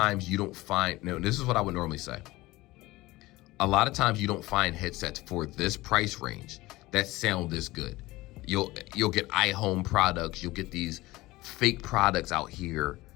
you don't find, no, this is what I would normally say. A lot of times you don't find headsets for this price range that sound this good. You'll get iHome products, you'll get these fake products out here,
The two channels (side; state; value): right; quieter; 19.4 dB